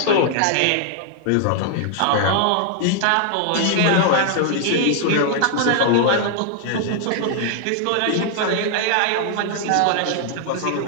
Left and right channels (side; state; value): both; different; correlation 0.00